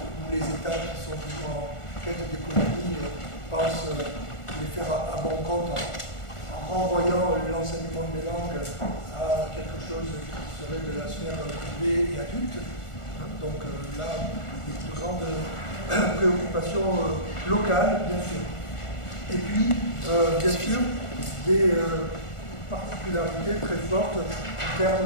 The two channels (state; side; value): late; right; 1.4 ms